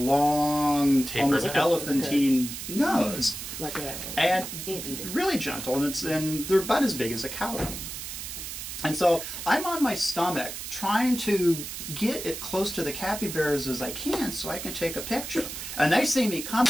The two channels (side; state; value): right; noise; hiss, 8 dB below the sound